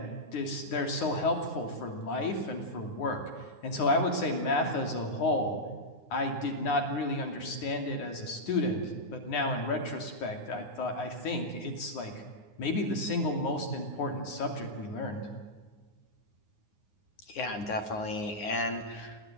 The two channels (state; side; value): late; right; 9.7 ms